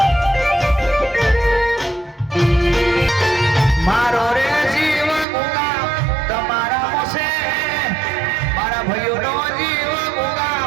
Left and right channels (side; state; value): left; drops out; at 5.2 s